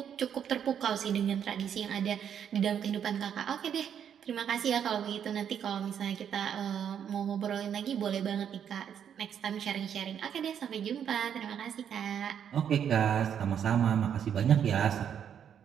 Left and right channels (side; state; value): left; quieter; 8.6 dB